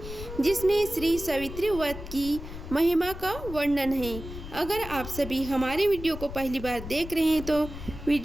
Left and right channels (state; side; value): noise; left; rumble, 11 dB below the sound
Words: जिसमें श्री सावित्री व्रत की महिमा का वर्णन है। अगर आप सभी हमारे वीडियो को पहली बार देख रहे हैं तो